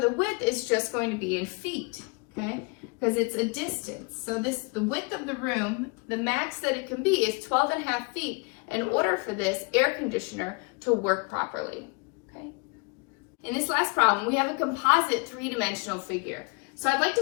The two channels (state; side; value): quieter; right; 31.0 dB